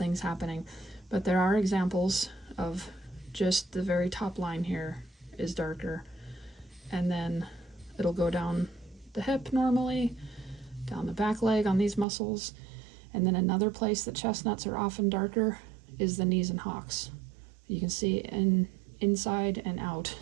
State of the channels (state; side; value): drops out; left; at 12.1 s